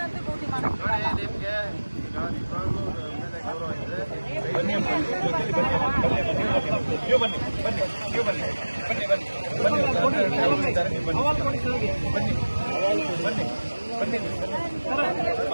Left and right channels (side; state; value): both; inverted; correlation -1.00